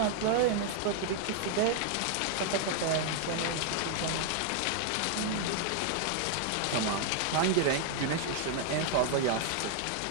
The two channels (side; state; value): both; different; correlation 0.00